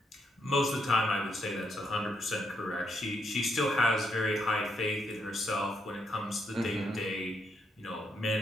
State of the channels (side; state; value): both; normal; correlation 0.77